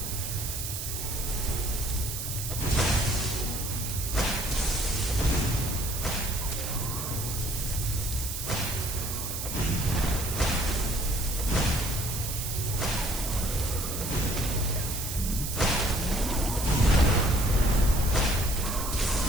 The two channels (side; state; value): right; noise; hiss, 5 dB below the sound